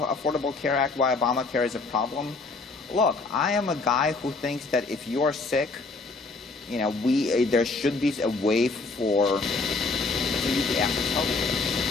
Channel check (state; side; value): quieter; right; 3.8 dB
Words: Care Act, why Obamacare is a problem? Look, I am a guy who thinks that if you're sick, there should be a way for you to access health care.